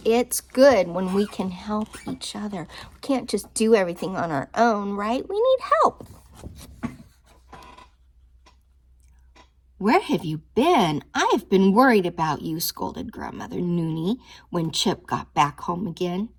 It's good when we can help each other. We can't just do everything on our own, right? We need help. Where have you been? I've been worried about you, scolded Grandmother Noonie when Chip got back home again.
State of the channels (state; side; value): identical; both; correlation 1.00